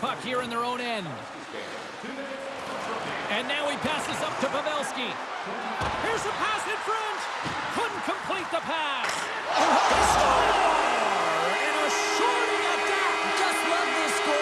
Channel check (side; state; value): both; identical; correlation 1.00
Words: here in their own end. And now he passes up to Pavelski. Here's a pass in front. Couldn't complete the pass. They score! And a shorty at that. Just love this